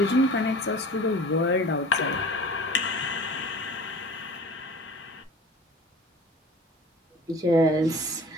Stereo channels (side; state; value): both; normal; correlation 0.41